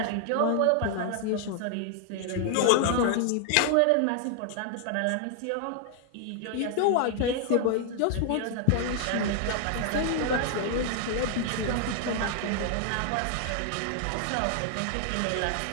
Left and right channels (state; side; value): different; both; correlation 0.00